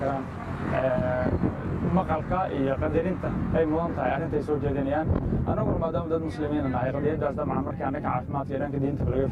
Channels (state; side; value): identical; both; correlation 1.00